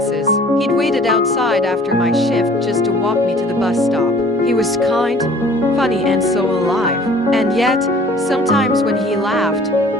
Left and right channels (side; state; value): both; normal; correlation 0.51